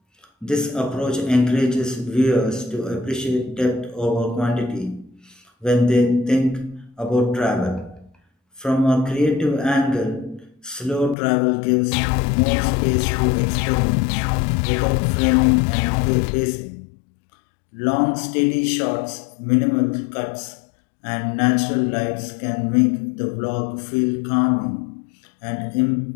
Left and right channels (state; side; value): drops out; right; at 11.2 s